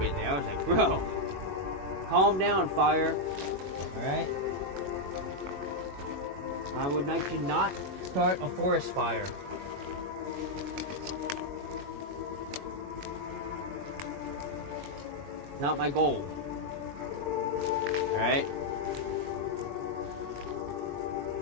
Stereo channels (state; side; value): late; left; 21 ms